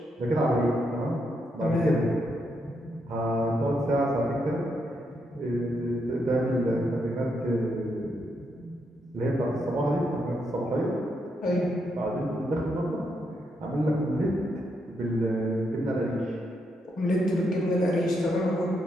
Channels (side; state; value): both; normal; correlation 0.80